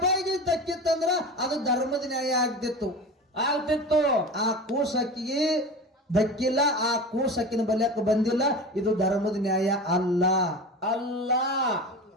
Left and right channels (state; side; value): normal; both; correlation 0.31